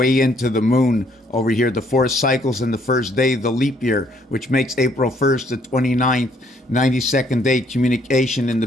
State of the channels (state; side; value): normal; both; correlation 0.66